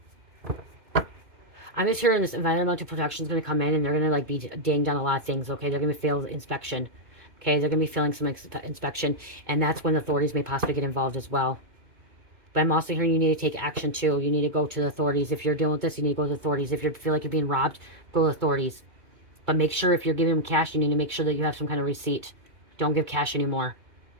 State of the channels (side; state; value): left; late; 2.2 ms